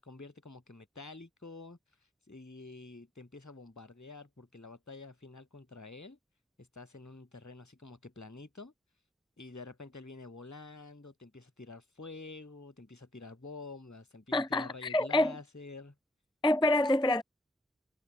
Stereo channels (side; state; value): both; normal; correlation 0.71